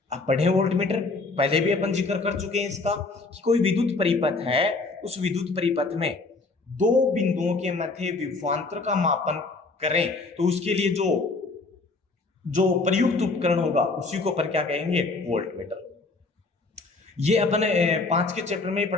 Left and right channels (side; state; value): right; quieter; 3.7 dB